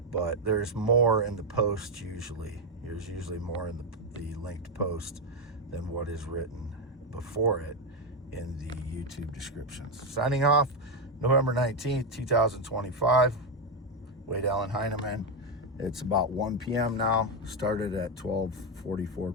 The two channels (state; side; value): normal; both; correlation 0.07